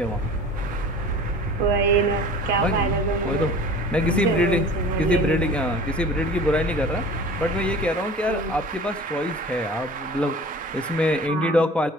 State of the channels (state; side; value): normal; both; correlation 0.42